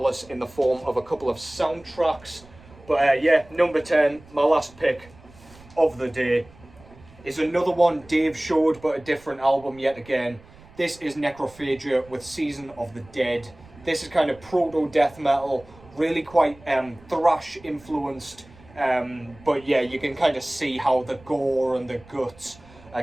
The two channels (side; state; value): right; noise; rumble, 24 dB below the sound